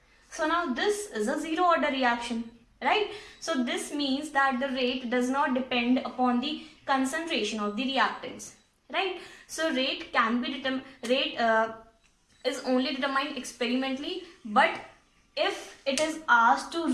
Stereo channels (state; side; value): identical; both; correlation 1.00